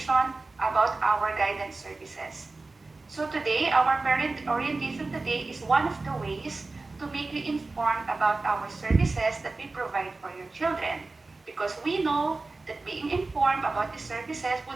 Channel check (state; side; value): quieter; left; 3.5 dB